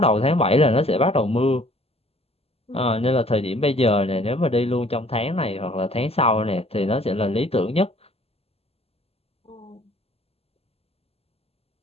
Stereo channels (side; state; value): right; late; 0.29 ms